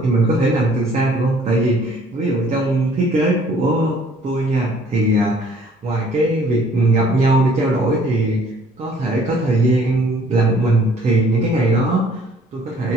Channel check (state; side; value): normal; both; correlation 0.58